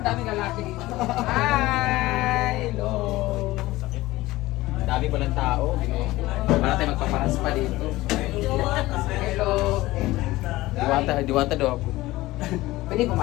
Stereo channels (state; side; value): quieter; right; 18.2 dB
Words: daming lalaki dito. Hi! Hello! Dami palang tao. Para tayo magpaparas pa dito. Hello! Diwata daw ako. Pwede